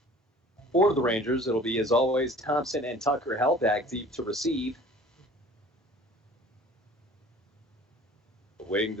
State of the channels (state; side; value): normal; both; correlation 0.47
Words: For the Rangers, it'll be, as always, Thompson and Tucker held back deep to receive. Awaiting